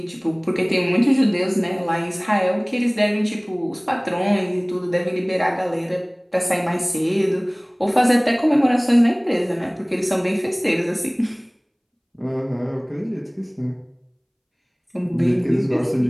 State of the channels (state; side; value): identical; both; correlation 1.00